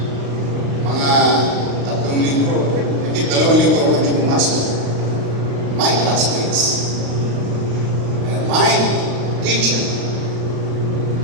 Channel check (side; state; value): left; late; 35 ms